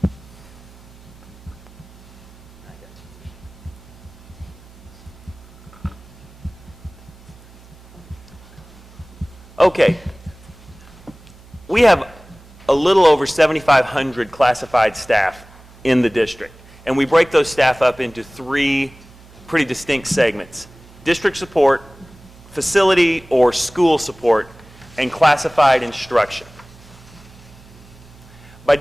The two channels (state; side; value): noise; right; hum, 23 dB below the sound